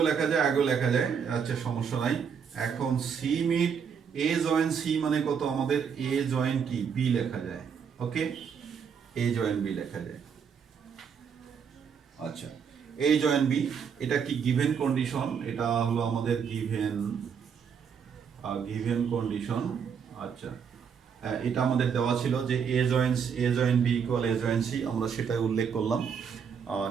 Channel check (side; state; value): left; quieter; 6.9 dB